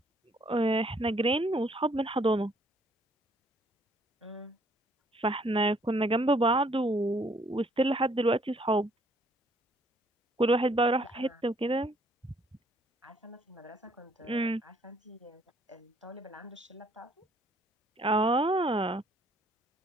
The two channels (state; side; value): normal; both; correlation 0.64